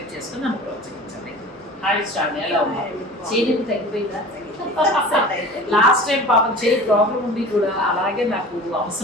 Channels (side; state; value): both; normal; correlation 0.39